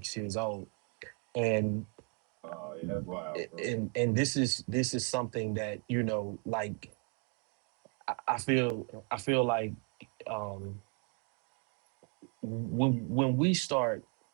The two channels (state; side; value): quieter; left; 39.0 dB